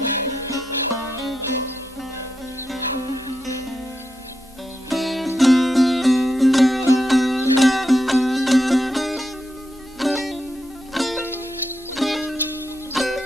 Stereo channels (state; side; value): normal; both; correlation 0.85